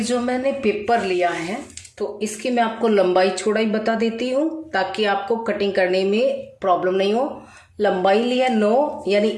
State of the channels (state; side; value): identical; both; correlation 1.00